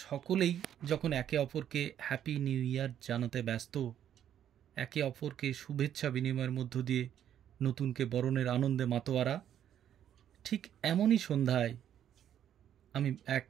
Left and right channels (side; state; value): left; quieter; 10.2 dB